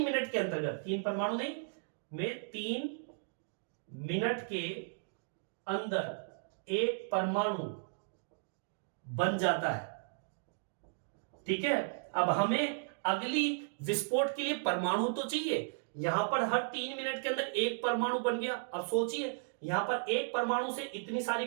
मिनट के अंतर्गत, 3 परमाणु नहीं, में 3 मिनट के अंदर एक परमाणु बन जाता है। ठीक है, अब हमें अगली विस्फोट के लिए परमाणु तो चाहिए। यहां पर हर 3 मिनट के अंदर एक परमाणु बन गया। अब सोचिए, यहां पर एक परमाणु से इतनी सारी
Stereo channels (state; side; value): silent; left; digital silence